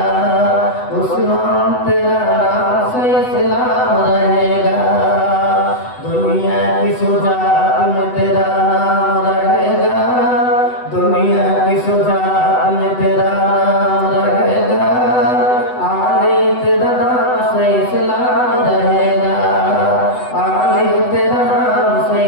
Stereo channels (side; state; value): right; late; 8.0 ms